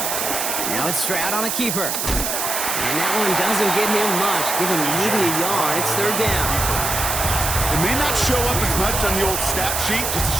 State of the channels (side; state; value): right; noise; hiss, 1 dB below the sound